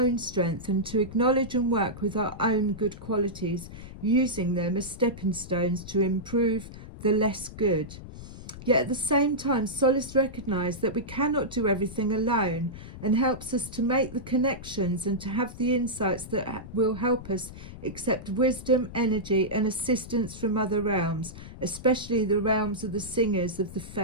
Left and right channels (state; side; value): noise; left; rumble, 13 dB below the sound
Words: strength and to acknowledge and work with our own good qualities, using them as stepping stones to improve the less good. Yet at the same time, Solace recognises that we cannot do everything alone and helps us to make the connections and to have the insights that will help us accept wisdom, energy and assistance from other realms, especially the realms of the singers of the